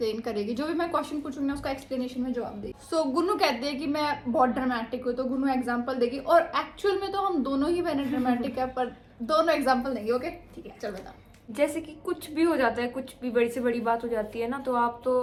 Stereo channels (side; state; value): both; identical; correlation 1.00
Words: करेगी, जो भी मैं क्वेश्चन पूछूंगी ना उसका एक्सप्लेनेशन में जवाब देगी. सो गुन्नू कहती है कि मैं बहुत ड्रामेटिक हूँ, तो गुन्नू एग्जांपल देगी और एक्चुअल में तो हम दोनों ही बहने ड्रामेटिक है, पर दोनों एग्जांपल देंगे. ओके ठीक है, चल बता. जैसे कि कुछ भी हो जाता है, कुछ भी बड़ी से बड़ी बात हो जाती है ना, तो आप तो